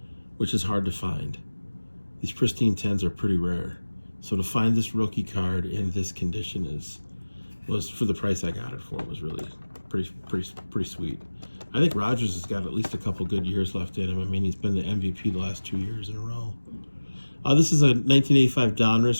which is hard to find. These pristine 10s are pretty rare. So to find this rookie card in this condition was for the price I got it for, was really pretty sweet. I think Rodgers has got at least a couple good years left in him. I mean, he's been the MVP the last 2 years in a row. This is a 1985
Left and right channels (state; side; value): inverted; both; correlation -1.00